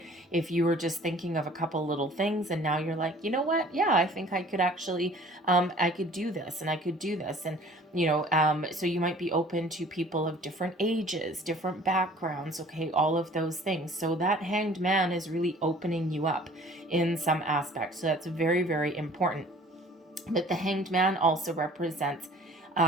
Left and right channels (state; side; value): normal; both; correlation 0.50